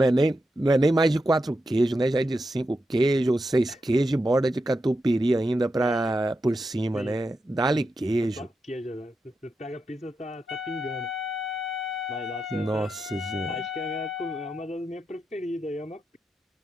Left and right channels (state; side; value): normal; both; correlation 0.87